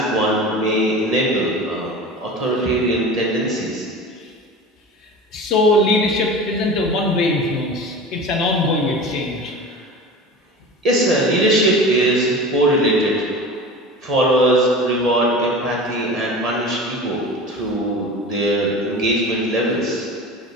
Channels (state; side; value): normal; both; correlation 0.34